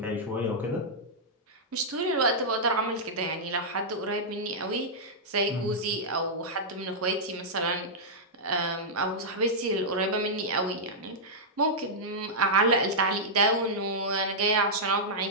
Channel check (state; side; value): normal; both; correlation -0.09